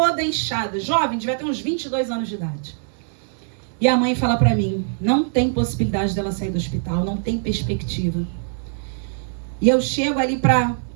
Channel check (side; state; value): left; silent; digital silence